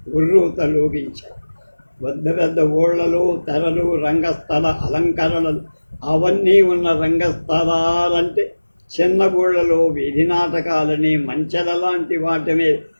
ఉర్రూతలోగించాయి. పెద్ద పెద్ద ఊళ్ళలో తెరలు, రంగస్థల అలంకరణలు అవన్నీ ఉన్న రంగస్థలాలంటే చిన్న ఊళ్ళలో వీధి నాటకాలని, మంచెల లాంటి వాటినే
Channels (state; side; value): inverted; both; correlation -1.00